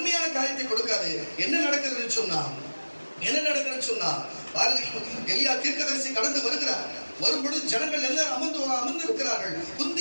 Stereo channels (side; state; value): both; inverted; correlation -1.00